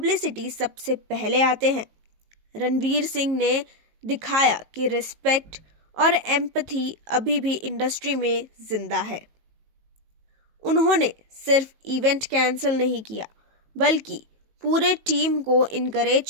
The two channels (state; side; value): late; left; 18 ms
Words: सबसे पहले आते हैं, रणवीर सिंह ने दिखाया कि रिस्पेक्ट और एम्पैथी अभी भी इंडस्ट्री में जिंदा है। उन्होंने सिर्फ इवेंट कैंसिल नहीं किया, बल्कि पूरे टीम को